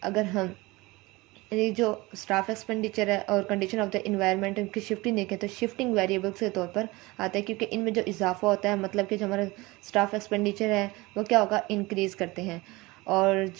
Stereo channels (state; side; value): quieter; left; 22.2 dB